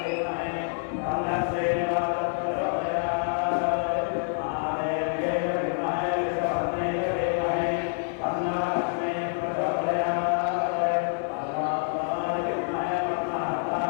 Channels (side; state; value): right; silent; 60 dB below the other